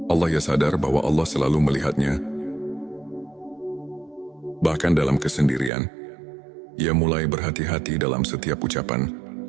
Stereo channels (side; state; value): left; drops out; at 5.7 s